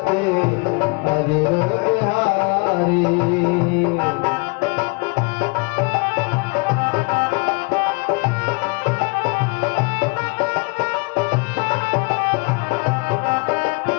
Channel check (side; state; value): right; quieter; 29.8 dB